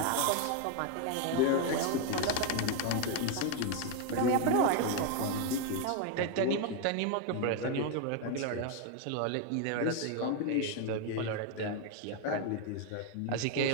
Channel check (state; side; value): different; both; correlation 0.01